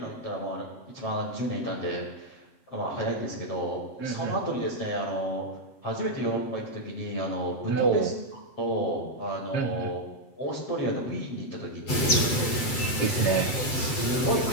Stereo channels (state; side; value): late; right; 7.9 ms